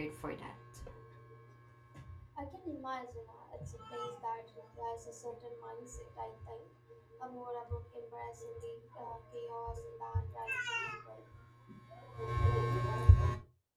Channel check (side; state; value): both; identical; correlation 1.00